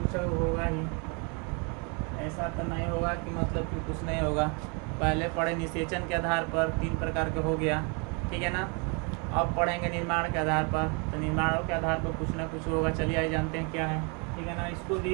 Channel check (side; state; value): left; quieter; 34.2 dB